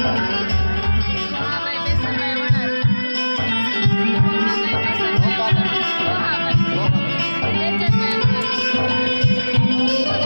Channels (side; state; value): both; inverted; correlation -1.00